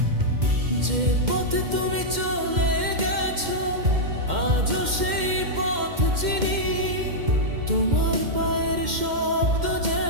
যে পথে তুমি চলে গেছো আজও সেই পথ চিনি, তোমার পায়ের শব্দ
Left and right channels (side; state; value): left; late; 2.1 ms